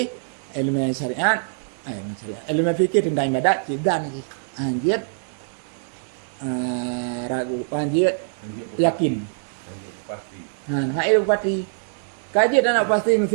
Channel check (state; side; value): silent; left; 60 dB below the other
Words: ilmu syariat, ilmu fikih tentang ibadat dan anjir ragu anjir yakin. Pasti. Nah itu pasti. Kaji dan pasti